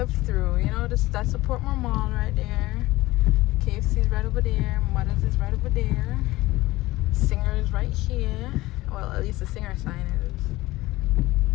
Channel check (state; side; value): quieter; right; 18.6 dB